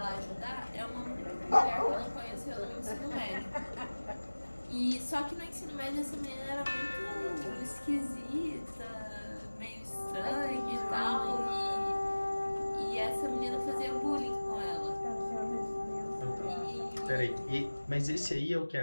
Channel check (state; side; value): inverted; both; correlation -1.00